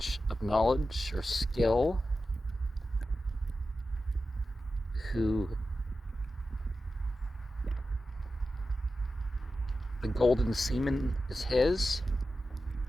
of knowledge or skill, who the golden semen is his,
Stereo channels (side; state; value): both; normal; correlation 0.92